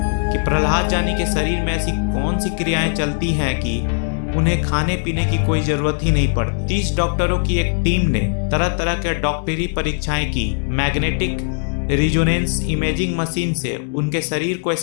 कि प्रहलाद जानी के शरीर में ऐसी कौन सी क्रियाएं चलती हैं कि उन्हें खाने पीने की कोई जरूरत ही नहीं पड़ती। 30 डॉक्टरों की एक टीम ने तरह तरह के डॉक्टरी परीक्षाएं की। मैग्नेटिक रिजोनेंस इमेजिंग मशीन से उनके शरीर को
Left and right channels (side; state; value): right; silent; digital silence